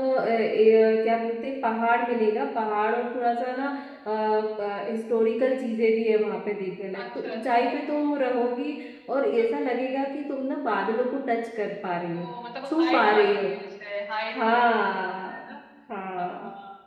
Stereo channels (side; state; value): both; identical; correlation 1.00